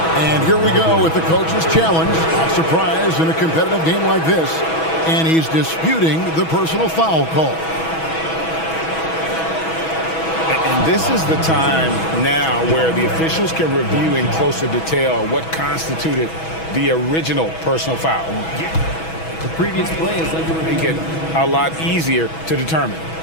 And here we go with the coach's challenge. Not surprised in a competitive game like this. And he's disputing the personal foul call. And this is the time now where the officials can review in closer detail what constituted the original personal foul. The previous play is under review. Make it a lot easier to determine.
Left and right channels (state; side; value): late; right; 6.2 ms